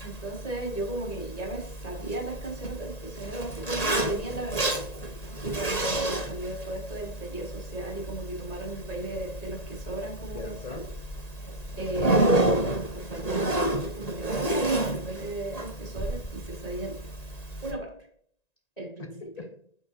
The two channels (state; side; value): late; right; 1.9 ms